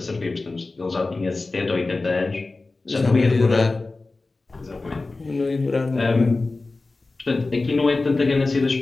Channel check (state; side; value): quieter; right; 3.4 dB